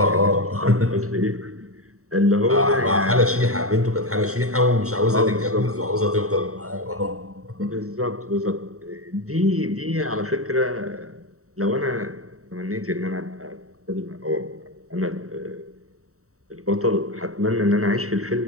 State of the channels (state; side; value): late; left; 0.64 ms